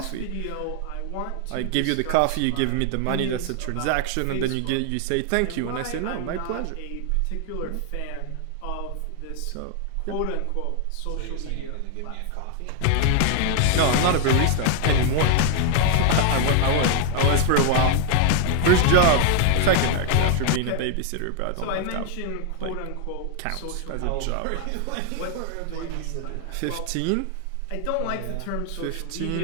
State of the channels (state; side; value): different; both; correlation 0.00